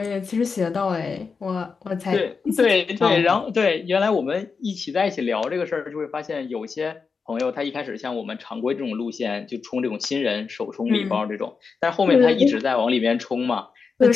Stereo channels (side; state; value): right; quieter; 5.1 dB